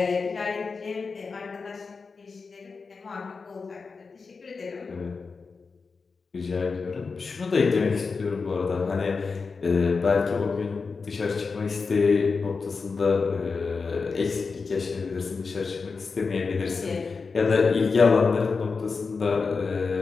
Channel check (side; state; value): right; quieter; 4.7 dB